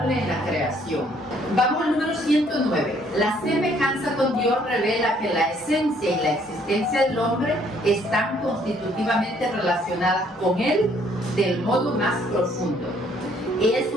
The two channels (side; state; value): both; normal; correlation 0.64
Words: en la creación. Vamos al número 109. La semejanza con Dios revela que la esencia y la existencia del hombre están constitutivamente relacionadas con Él del modo más profundo. Es